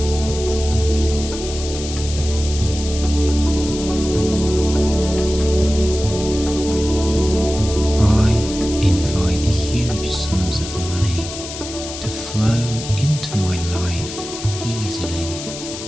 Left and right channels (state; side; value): noise; left; hiss, 10 dB below the sound